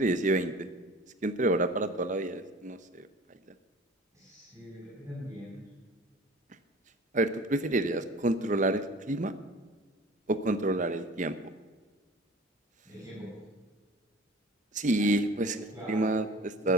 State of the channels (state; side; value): normal; both; correlation 0.43